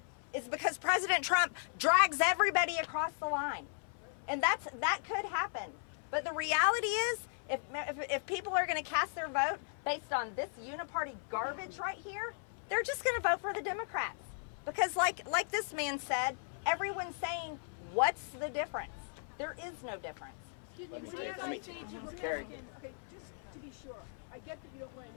is because President Trump drags everybody across the line. And that could happen. But the reality is, if people are going to cast their vote based on this uniparty garbage right here, they're just going to vote for the Democrats. Because like this man said, everyone's saying, what's the difference? There is no difference. let me take Carrie. Okay, just to be sure, I get that you don't want to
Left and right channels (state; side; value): silent; right; 53 dB below the other